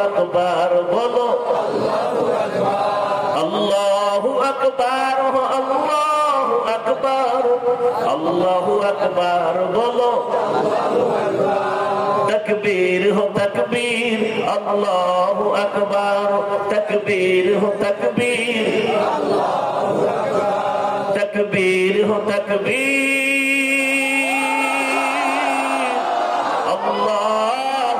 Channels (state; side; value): identical; both; correlation 1.00